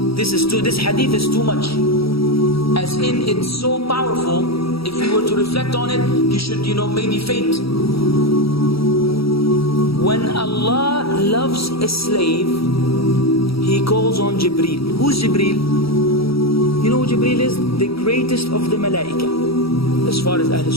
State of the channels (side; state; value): right; late; 0.76 ms